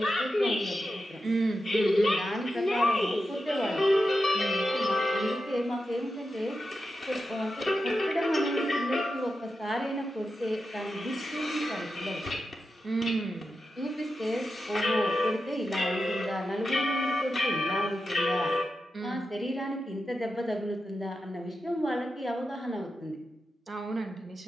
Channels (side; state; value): both; normal; correlation 0.89